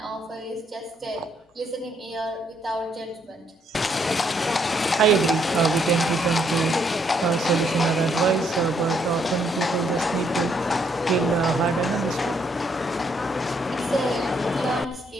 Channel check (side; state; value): both; normal; correlation 0.72